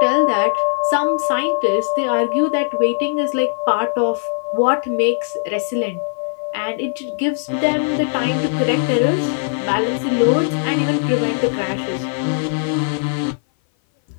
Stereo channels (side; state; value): right; silent; 58 dB below the other